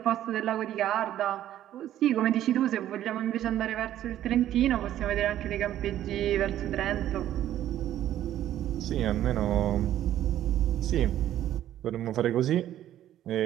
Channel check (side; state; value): left; quieter; 12.2 dB